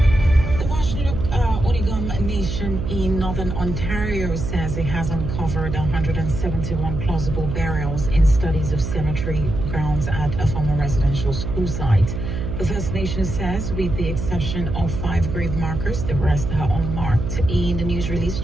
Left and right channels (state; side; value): noise; right; hum, 4 dB below the sound